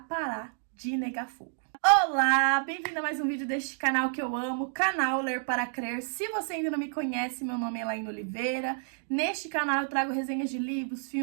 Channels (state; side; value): silent; left; digital silence